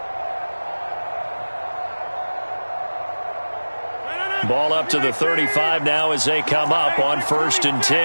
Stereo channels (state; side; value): inverted; both; correlation -1.00